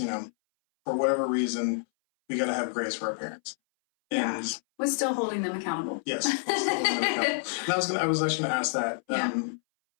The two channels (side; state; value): right; silent; 59 dB below the other